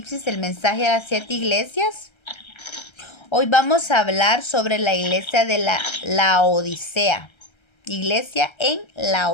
el mensaje a las 7 iglesias. Hoy vamos a hablar sobre la iglesia de la Odisea. Iglesia en la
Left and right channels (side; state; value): right; late; 1.3 ms